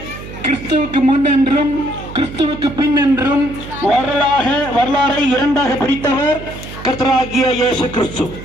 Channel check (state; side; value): noise; right; hum, 13 dB below the sound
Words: கிறிஸ்துவுக்கு முன் என்றும் கிறிஸ்துவுக்கு பின் என்றும் வரலாறை இரண்டாக பிரித்தவர் கர்த்தராகிய இயேசு கிறிஸ்து.